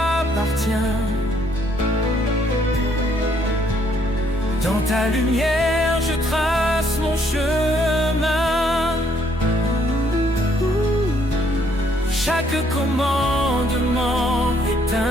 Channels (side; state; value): both; normal; correlation 0.68